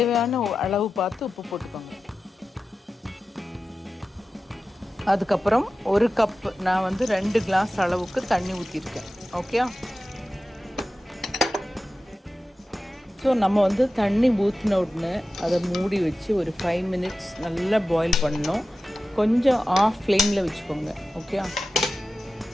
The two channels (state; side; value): normal; both; correlation 0.93